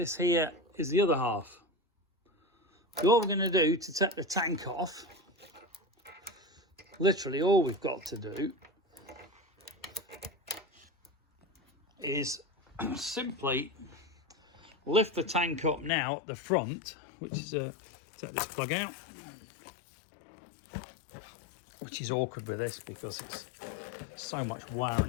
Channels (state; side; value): drops out; right; at 15.9 s